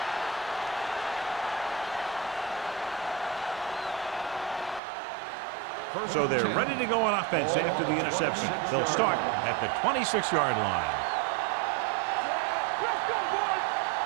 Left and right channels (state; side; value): drops out; left; at 4.8 s